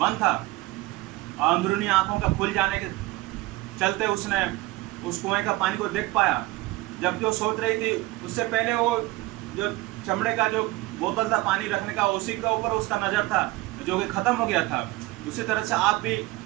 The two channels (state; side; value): quieter; left; 19.7 dB